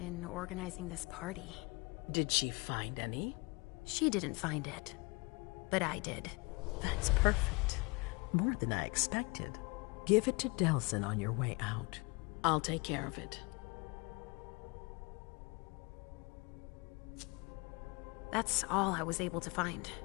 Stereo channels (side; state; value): right; quieter; 27.8 dB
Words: organizing this party. Did she find any? She didn't find it, but I did. That's perfect. More than I expected. Give it to Delson on your way out. I'll take care of it. That's all I was able to find.